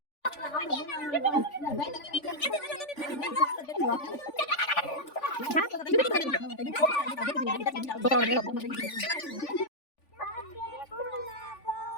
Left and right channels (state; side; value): late; right; 3.5 ms